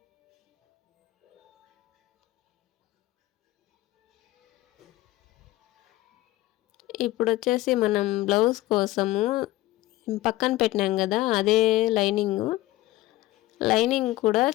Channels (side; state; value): right; quieter; 17.1 dB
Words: ఇప్పుడు వచ్చేసి మనం బ్లౌజ్ కోసము పక్కన పెట్టినాం కదా, అదే లైనింగ్ కూడా